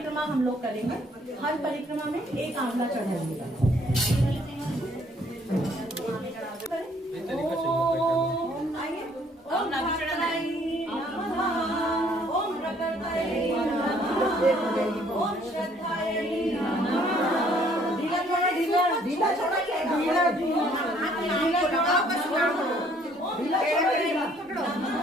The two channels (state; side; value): normal; both; correlation 0.62